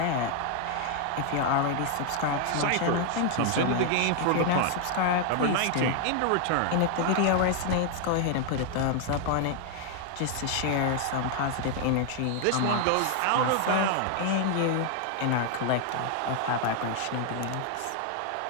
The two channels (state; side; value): different; both; correlation 0.00